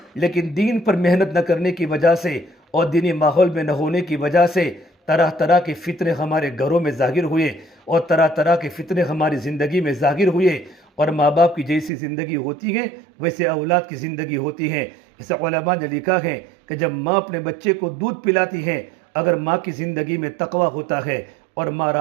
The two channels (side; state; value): left; drops out; at 11.9 s